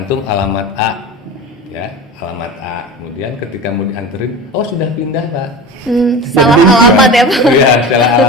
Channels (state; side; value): normal; both; correlation 0.31